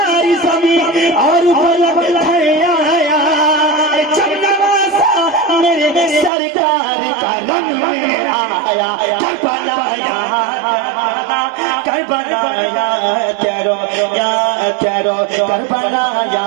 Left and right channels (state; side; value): drops out; left; at 6.3 s